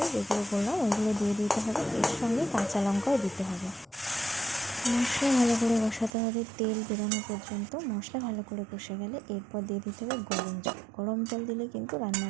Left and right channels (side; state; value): left; drops out; at 6.1 s